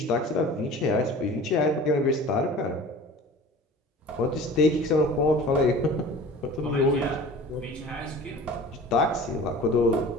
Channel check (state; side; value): normal; both; correlation 0.41